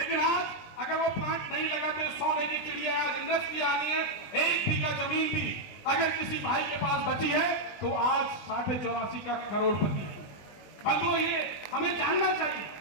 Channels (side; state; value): right; late; 20 ms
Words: आज अगर वो प्लांट नहीं लगाते, सोने की चिड़िया, आज इंडस्ट्री आनी है, 1 बीघा जमीन भी अगर किसी भाई के पास बची है तो आज 84.5 का करोड़पति है। बंधुओं, ये हमें जानना चाहिए।